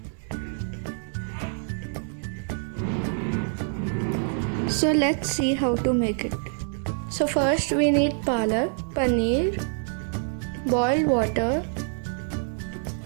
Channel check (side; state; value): left; silent; 61 dB below the other